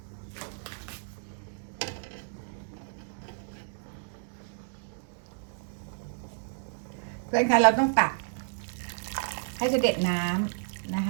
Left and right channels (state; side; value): silent; left; 57 dB below the other